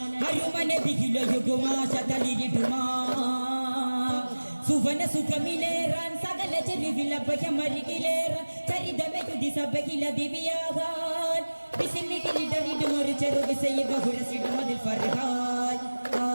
Ayumane bigilo yuguma shataliriduma. Suvana sukamileran sagala cherivila bayamarigileran charidame yudi sabagila diviyagan bisimikili daridumor cheru visaya bahurasidu madil farhan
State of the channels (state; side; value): inverted; both; correlation -1.00